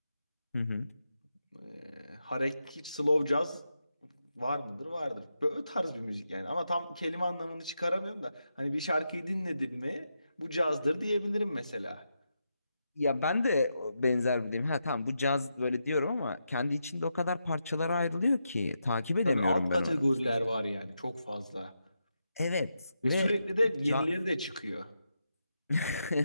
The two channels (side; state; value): both; inverted; correlation -0.85